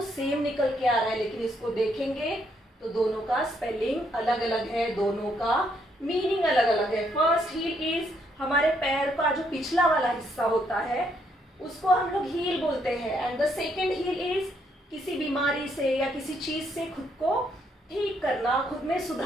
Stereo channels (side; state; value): both; normal; correlation 0.73